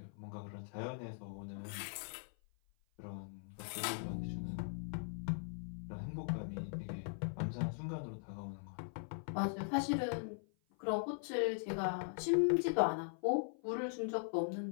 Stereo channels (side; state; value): right; silent; 51 dB below the other